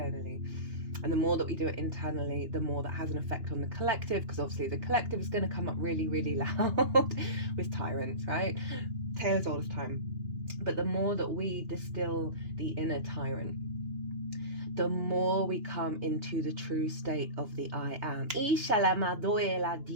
And the more that we do it internally, the more that has an effect on the collective, because obviously the collective is going to come up really, really loud with tyrants, right? Tale as old as time. But the more that we distill the inner tyrant, the more we come into the true state of the I am.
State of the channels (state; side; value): late; left; 2.9 ms